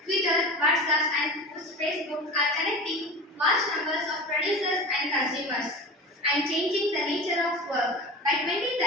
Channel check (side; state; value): both; normal; correlation 0.32